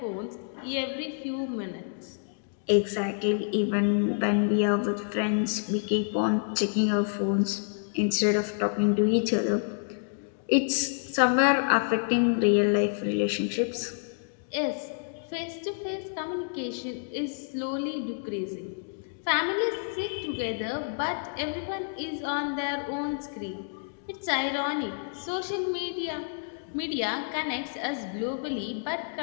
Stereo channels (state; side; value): silent; right; digital silence